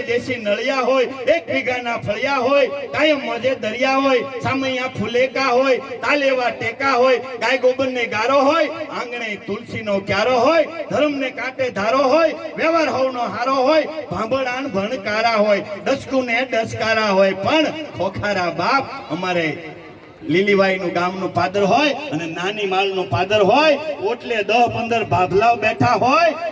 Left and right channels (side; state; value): both; identical; correlation 1.00